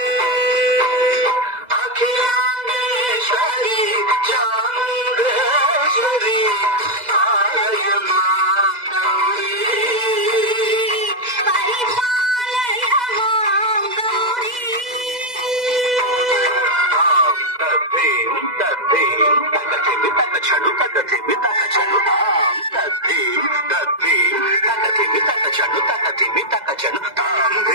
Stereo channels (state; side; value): late; left; 2.0 ms